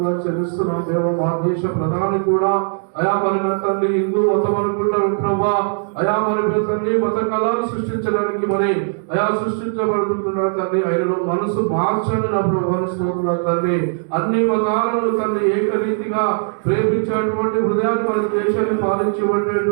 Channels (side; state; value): left; silent; digital silence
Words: చెల్లిస్తున్నాం దేవా మా దేశ ప్రధాని కూడా అయా మరి నా తండ్రి హిందూ మతం అనుకుంటారు ప్రభా అయా మరి తండ్రి మత కళాలు సృష్టించడానికి మరి అయా సృష్టించబడుతున్నాడు తండ్రి ఆయనలో మనసు మార్చండి నా ప్రభావాన్ని స్తోత్రాలు తండ్రి అన్ని మతాలను తండ్రి ఏకరీతిగా ప్రేమించేటువంటి హృదయాన్ని మన దేశాన్ని